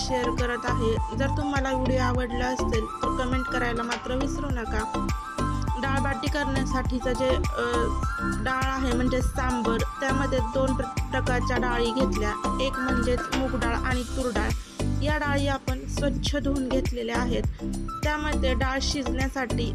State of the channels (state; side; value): identical; both; correlation 1.00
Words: करत आहे। जर तुम्हाला व्हिडिओ आवडला असेल तर कमेंट करायला मात्र विसरू नका। डाळ बाटी करण्यासाठीचं जे डाळ आहे म्हणजे सांबर, त्यामध्ये दोन प्रकारच्या डाळी घेतल्या। एक म्हणजे मूग डाळ आणि तूर डाळ। या डाळी आपण स्वच्छ धुवून घेतलेल्या आहेत। त्यामध्ये डाळ शिजण्यासाठी